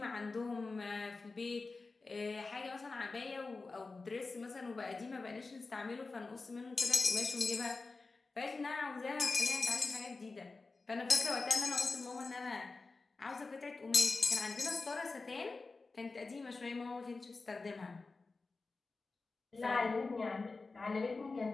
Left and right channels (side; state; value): right; quieter; 3.8 dB